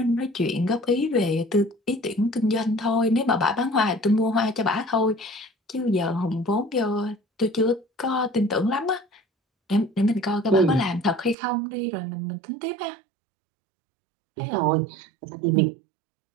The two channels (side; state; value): left; drops out; at 11.4 s